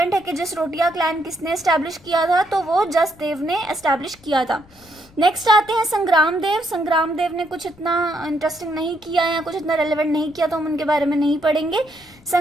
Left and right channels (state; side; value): noise; left; rumble, 27 dB below the sound